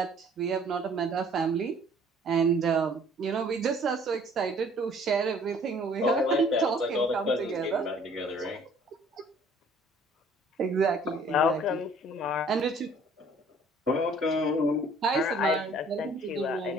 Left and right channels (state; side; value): normal; both; correlation 0.56